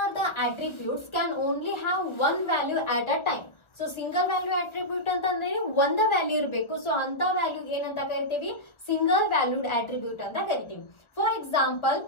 the attributes can only have one value at a time. So single value attribute ಅಂತಂದ್ರೆ ಒಂದ value ಇರಬೇಕು. So ಅಂತ value ಏನಂತ ಕರಿತೀವಿ, single valued attribute ಅಂತ ಕರಿತೀವಿ. For example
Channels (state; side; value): late; right; 1.2 ms